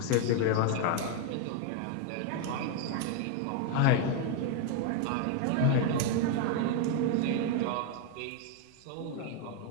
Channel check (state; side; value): different; both; correlation 0.00